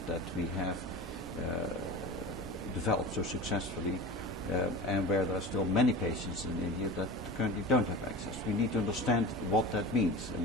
we have developed so successfully, and where there are still many patients in India that currently don't have access. We need to understand what that means, and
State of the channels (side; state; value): both; normal; correlation 0.33